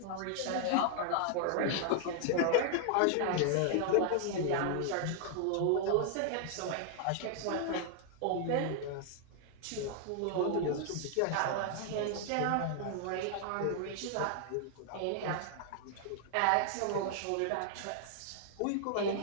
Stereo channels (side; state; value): both; different; correlation 0.00